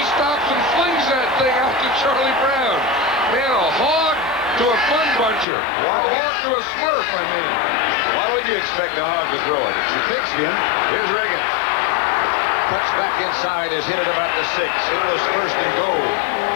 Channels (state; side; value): drops out; right; at 5.5 s